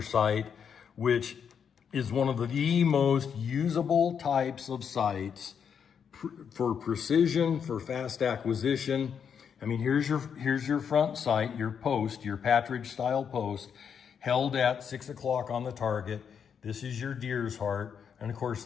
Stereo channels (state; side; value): quieter; right; 7.3 dB